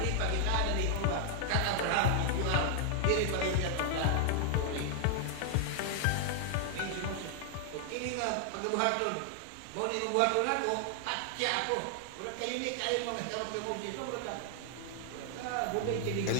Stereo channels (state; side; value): different; both; correlation 0.00